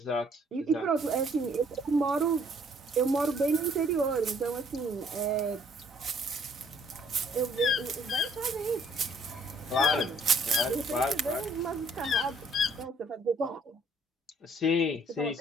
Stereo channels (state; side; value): normal; both; correlation 0.63